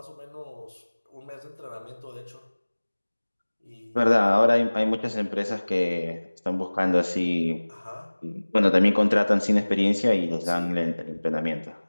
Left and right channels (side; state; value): both; inverted; correlation -1.00